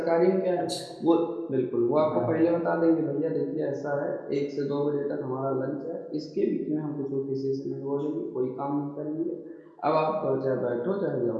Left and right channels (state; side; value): identical; both; correlation 1.00